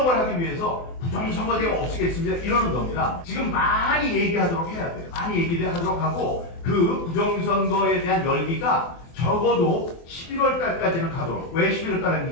하기 위해서 부정선거제가 없애겠습니다 이러는 겁니다. 지금 많이 얘기하도록 해야 돼요. 많이 얘기를 하도록 하고 그 부정선거에 대한 열기가 적어도 11월 달까지는 가도록. 왜 11월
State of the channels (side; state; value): right; late; 24 ms